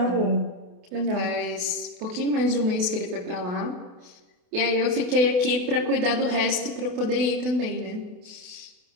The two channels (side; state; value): left; late; 28 ms